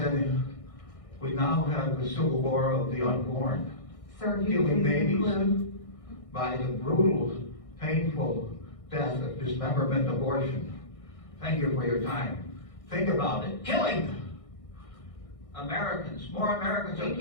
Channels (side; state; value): right; late; 1.6 ms